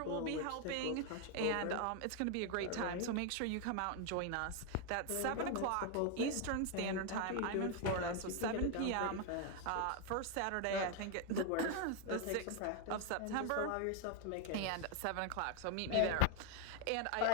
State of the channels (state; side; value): different; both; correlation 0.01